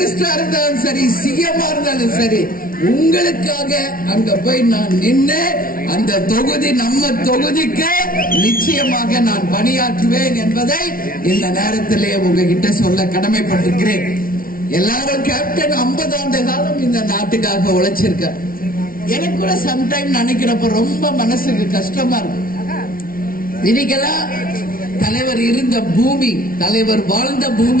இருந்தாலும் சரி, சிஎம் இருந்தாலும் சரி, உங்களுக்காக அங்க போய் நான் நின்று அந்த தொகுதி நம்ம தொகுதிக்கு நிச்சயமாக நான் பணியாற்றுவேன் என்பதை இந்த நேரத்திலே உங்ககிட்ட சொல்ல கடமைப்பட்டிருக்கிறேன். எல்லாரும் கேப்டன் 50 ஆண்டு காலம் இந்த நாட்டுக்காக உழைச்சிருக்க. எனக்கு கூட சம்டைம் நினைக்கிறப்ப ரொம்ப மனசுக்கு கஷ்டமா இருக்கு. இன்னைக்கெல்லாம் தலைவர் இருந்த பூமி, தலைவர் வாழ்ந்த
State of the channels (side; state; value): right; late; 0.42 ms